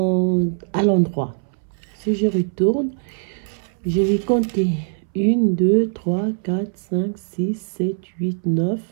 à l'endroit. Si je retourne, je vais compter 1, 2, 3, 4, 5, 6, 7, 8, 9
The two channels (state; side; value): silent; left; 61 dB below the other